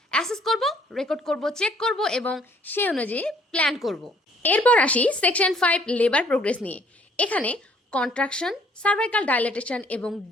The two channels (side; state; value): both; normal; correlation 0.61